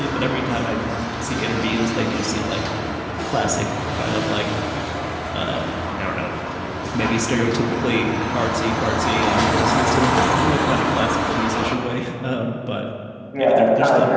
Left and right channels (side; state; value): both; identical; correlation 1.00